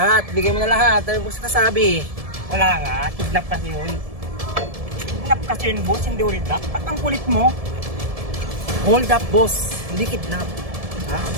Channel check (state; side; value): late; left; 1.7 ms